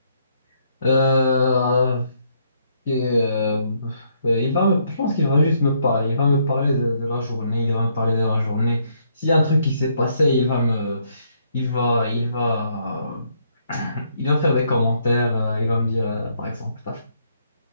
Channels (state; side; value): inverted; both; correlation -0.72